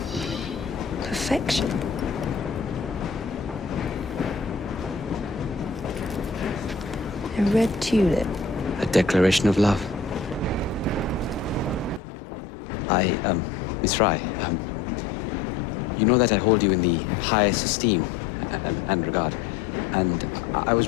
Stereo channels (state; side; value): drops out; right; at 12.0 s